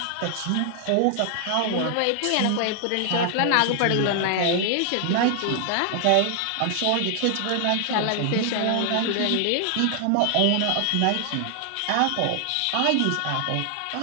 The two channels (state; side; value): different; both; correlation 0.00